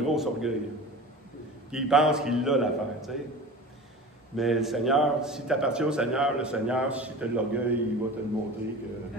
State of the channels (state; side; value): normal; both; correlation 0.35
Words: grosse orgueil. Puis il pense qu'il l'a l'affaire, tu sais. Mais le Seigneur, si tu appartiens au Seigneur, le Seigneur, si tu as de l'orgueil, il va te le montrer que